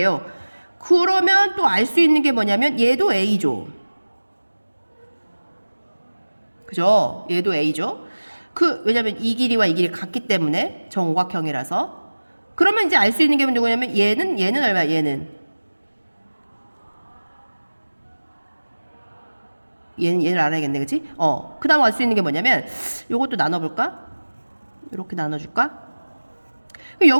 그러면 또 알 수 있는 게 뭐냐면 얘도 A죠. 그죠? 얘도 A죠. 왜냐면 이 길이와 이 길이 같기 때문에 정오각형이라서. 그러면 이제 알 수 있는 게 누구냐면 얘는 얼마야? 얘는 얘를 알아야겠네. 그치? 그 다음 알 수 있는 게 뭐냐면 요것도 나눠볼까? 이렇게 나눠줄까?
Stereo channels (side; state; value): both; inverted; correlation -1.00